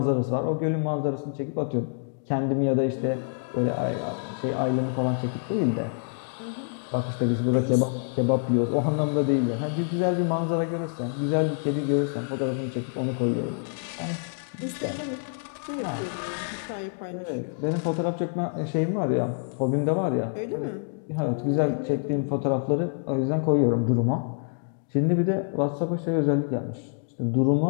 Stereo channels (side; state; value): right; silent; digital silence